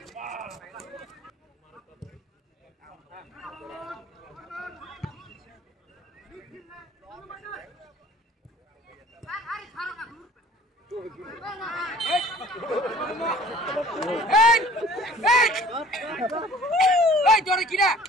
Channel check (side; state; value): both; normal; correlation 0.49